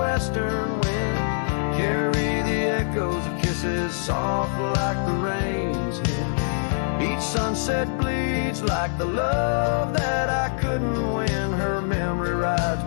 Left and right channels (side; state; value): right; silent; digital silence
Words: wind carry the echoes of kisses soft like the rain's hymn. Each sunset bleeds like the love that I couldn't win. Her memory rides